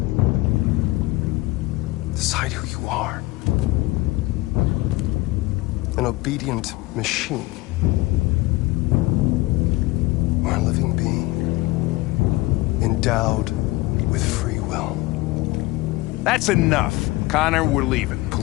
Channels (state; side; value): quieter; right; 20.5 dB